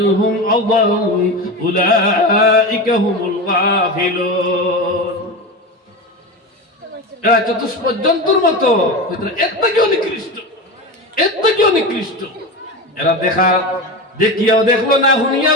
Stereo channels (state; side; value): normal; both; correlation 0.23